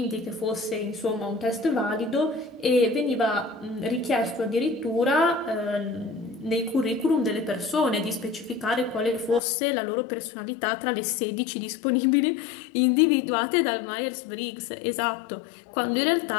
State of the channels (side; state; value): right; drops out; at 9.4 s